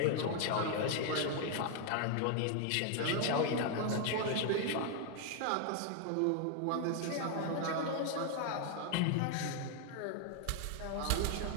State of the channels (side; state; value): both; different; correlation 0.00